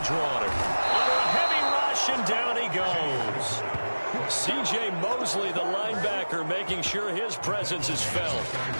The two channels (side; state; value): both; inverted; correlation -1.00